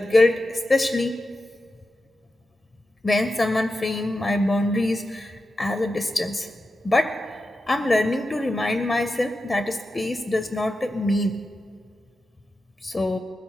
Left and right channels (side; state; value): both; normal; correlation 0.91